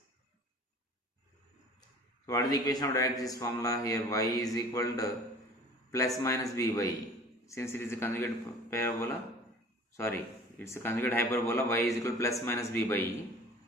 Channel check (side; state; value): both; normal; correlation 0.45